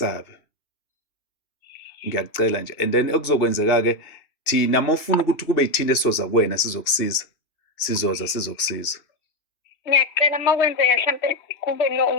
Ngiyakucela nje. And then okuzokwenzeka-ke, thina mawufuna ukuthi kube yithina esizoza kuwena sizokusiza, sizokusiza. Ngiyacela uma kwenzeka mhlampe kube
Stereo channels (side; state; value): right; late; 2.4 ms